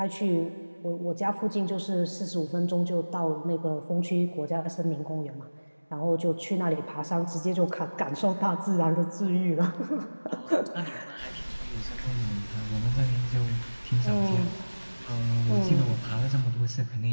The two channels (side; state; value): both; inverted; correlation -1.00